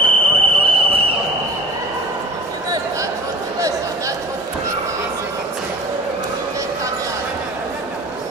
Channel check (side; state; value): both; normal; correlation 0.42